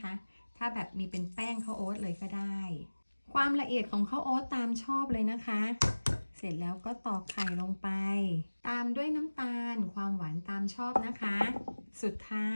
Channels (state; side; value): inverted; both; correlation -1.00